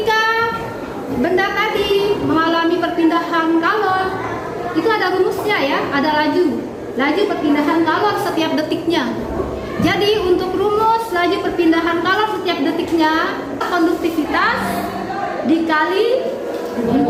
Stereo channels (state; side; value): identical; both; correlation 1.00